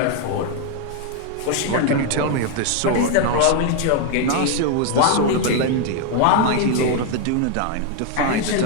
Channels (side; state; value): both; different; correlation 0.01